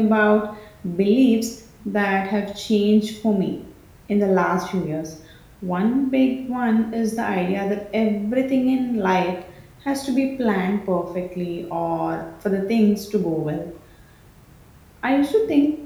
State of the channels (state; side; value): identical; both; correlation 1.00